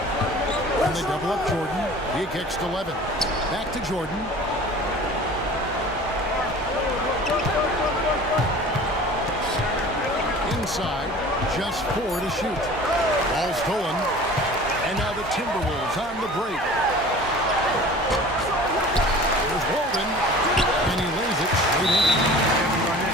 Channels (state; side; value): normal; both; correlation 0.42